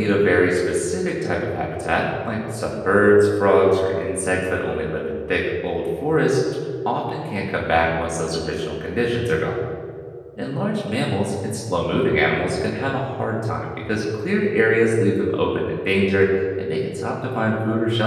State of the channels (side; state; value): both; identical; correlation 1.00